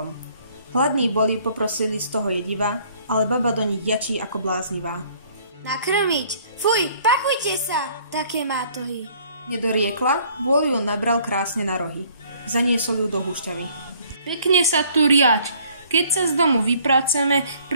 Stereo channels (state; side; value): inverted; both; correlation -0.59